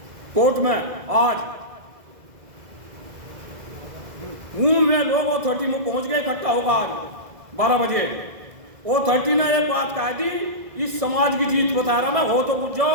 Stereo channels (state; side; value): late; left; 1.6 ms